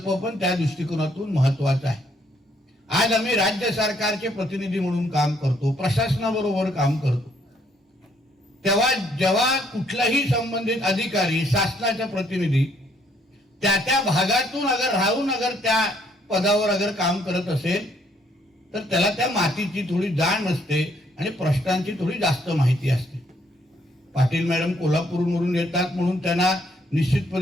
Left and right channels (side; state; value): both; normal; correlation 0.68